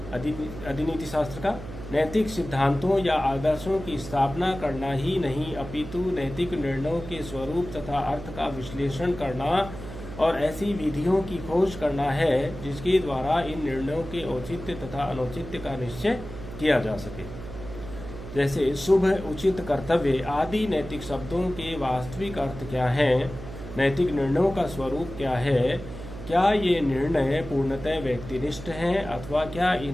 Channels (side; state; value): right; noise; hum, 12 dB below the sound